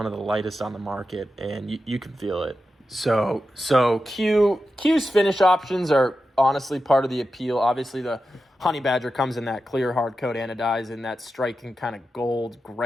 of the lightest on the market, and you can feel it. So Q's finish options are honestly part of the appeal. Obviously, the Honey Badger comes in that clear hard coat anodized and that striking kind of gold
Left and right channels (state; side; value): normal; both; correlation 0.90